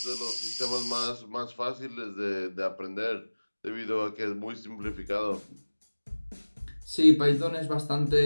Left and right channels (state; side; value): inverted; both; correlation -1.00